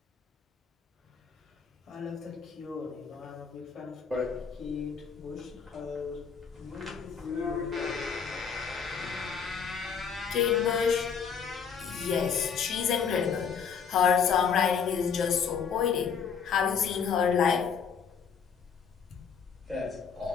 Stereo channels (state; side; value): quieter; right; 6.6 dB